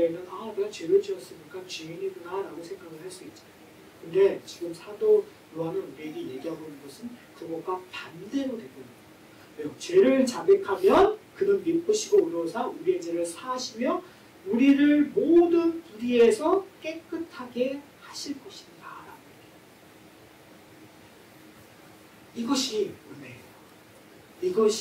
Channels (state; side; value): identical; both; correlation 1.00